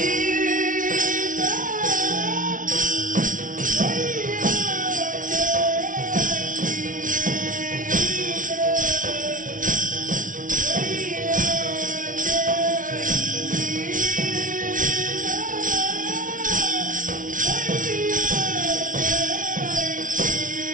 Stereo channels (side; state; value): left; late; 0.38 ms